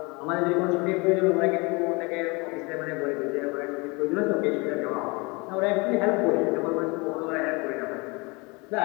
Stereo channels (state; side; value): quieter; right; 27.3 dB